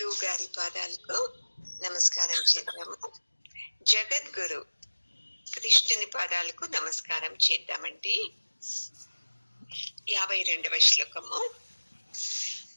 గారి పాదాలకు నమస్కారం చేద్దాము. జగద్గురు కృష్ణుని పాదాలకు నమస్కారం చేద్దామండి. 52వ శ్లోకము.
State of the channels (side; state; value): both; inverted; correlation -1.00